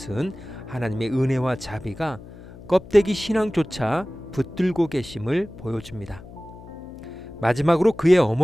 하나님의 은혜와 자비가 껍데기 신앙조차 붙들고 계심을 보여줍니다. 마지막으로 그의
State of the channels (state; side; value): noise; left; hum, 17 dB below the sound